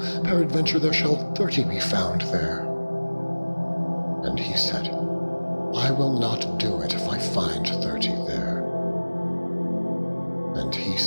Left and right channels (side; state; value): both; inverted; correlation -1.00